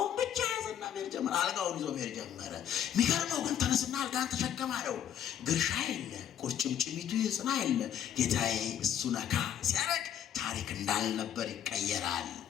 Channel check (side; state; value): right; quieter; 9.9 dB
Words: ብቻ ያዘና መሄድ ጀመረ። አልጋውን ይዞ መሄድ ጀመረ። የሚገርመው ግን ተነስና አልጋን ተሸከም አለው። ግርሻ የለ፣ ቁርጭምጭሚቱ ይጽና የለ። ጌታዬ እሱ ነካ ሲያረግ ታሪክ እንዳልነበር ይቀየራል።